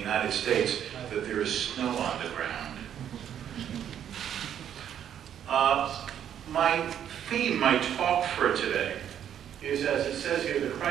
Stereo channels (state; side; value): quieter; left; 9.7 dB